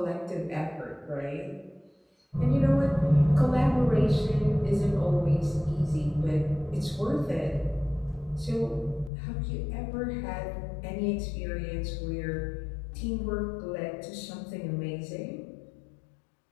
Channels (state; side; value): drops out; right; at 9.1 s